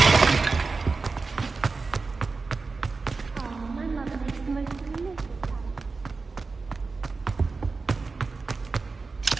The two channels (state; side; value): quieter; left; 4.2 dB